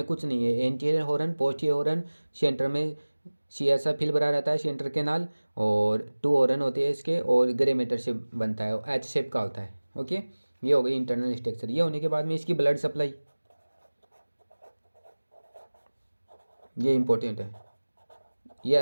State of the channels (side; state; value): both; inverted; correlation -1.00